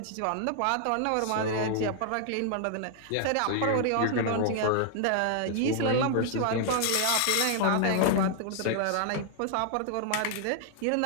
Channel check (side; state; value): both; different; correlation 0.00